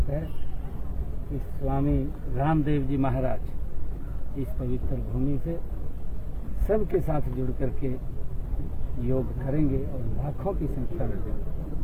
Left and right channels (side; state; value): both; identical; correlation 1.00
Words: है कि स्वामी रामदेव जी महाराज इस पवित्र भूमि से सबके साथ जुड़ करके योग करेंगे और लाखों की संख्या में